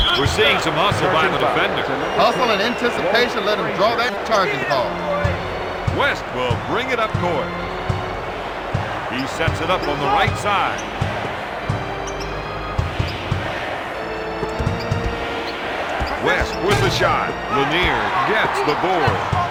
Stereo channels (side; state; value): both; identical; correlation 1.00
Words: We're seeing some hustle by the defender. Hustle and anticipation let him draw that charging call. West will bring it up court. He sets it up on the right side. West with the shot. Lanier gets the board.